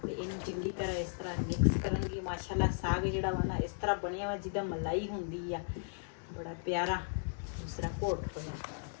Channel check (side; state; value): right; silent; digital silence